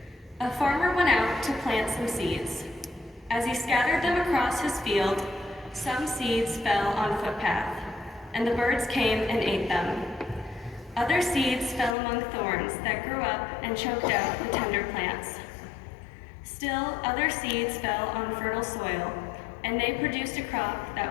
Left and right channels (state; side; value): drops out; right; at 12.0 s